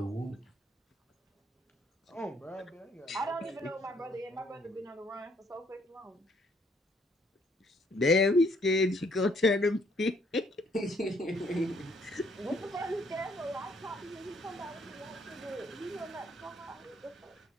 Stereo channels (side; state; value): both; normal; correlation 0.67